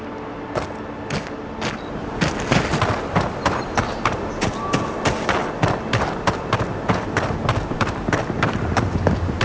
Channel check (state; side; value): identical; both; correlation 1.00